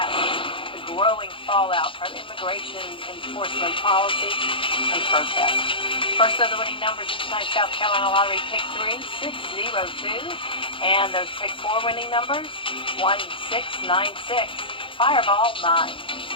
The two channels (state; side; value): late; right; 0.25 ms